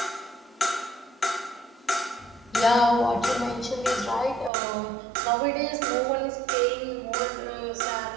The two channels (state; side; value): drops out; left; at 4.5 s